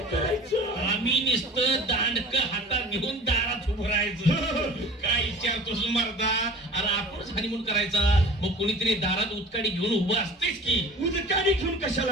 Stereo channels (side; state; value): both; normal; correlation 0.41